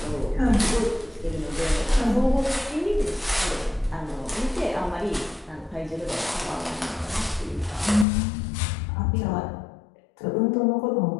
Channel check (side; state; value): right; drops out; at 8.1 s